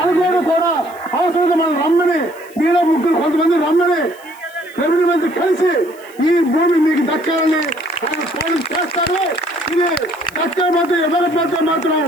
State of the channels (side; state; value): left; noise; hiss, 24 dB below the sound